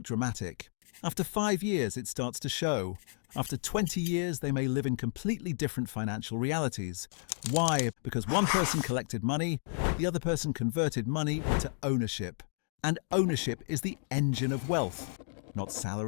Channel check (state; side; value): silent; right; digital silence